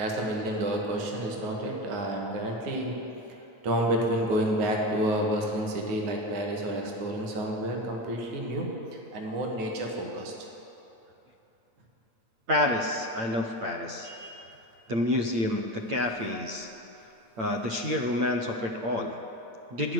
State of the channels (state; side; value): late; left; 8.8 ms